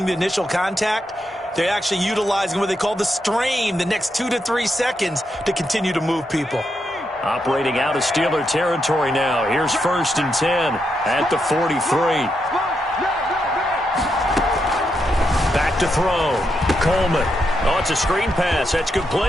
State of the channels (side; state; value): both; normal; correlation 0.82